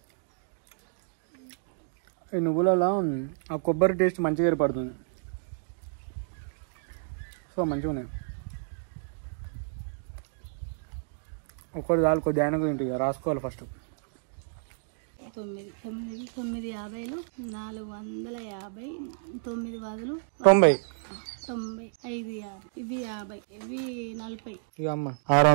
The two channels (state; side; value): silent; left; digital silence